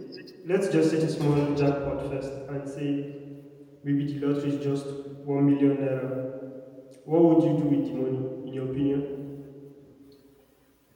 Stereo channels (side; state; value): both; identical; correlation 1.00